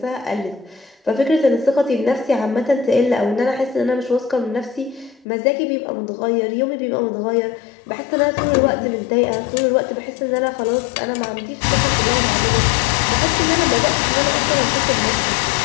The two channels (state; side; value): drops out; right; at 5.2 s